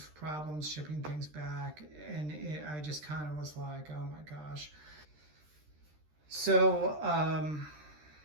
problems shipping things back. And I just kind of was like, oh my gosh. So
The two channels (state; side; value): late; left; 13 ms